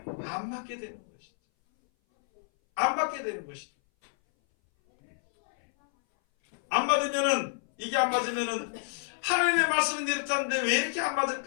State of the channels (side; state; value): right; silent; 59 dB below the other